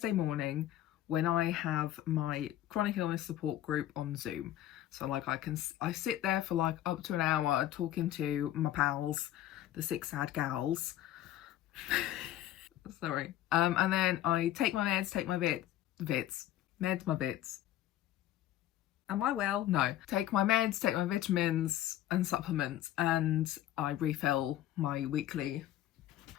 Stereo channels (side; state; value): right; quieter; 13.1 dB